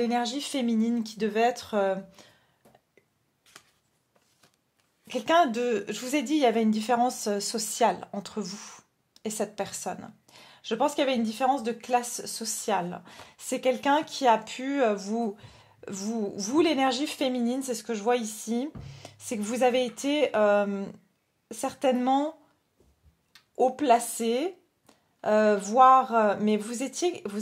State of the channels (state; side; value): identical; both; correlation 1.00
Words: féminine qui devait être... quelqu'un de... Je vous ai dit, il y avait une différence sociale entre vous et cette personne. Je pense qu'il y avait une différence de classe sociale. C'est quelqu'un qui a pu vous l'énergie féminine, c'est ce que je vois ici, c'est que vous avez été certainement haut placé, mais